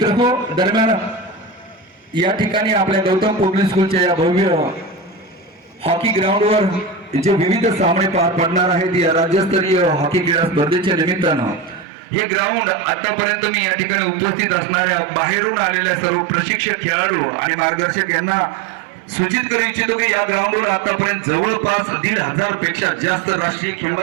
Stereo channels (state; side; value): drops out; left; at 11.9 s